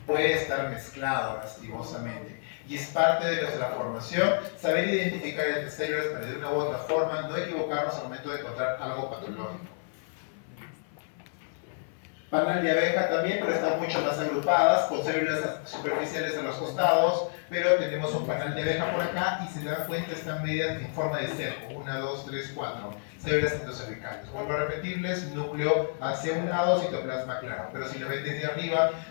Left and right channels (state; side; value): silent; right; 58 dB below the other